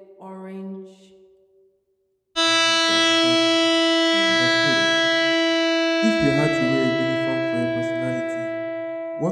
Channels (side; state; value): both; identical; correlation 1.00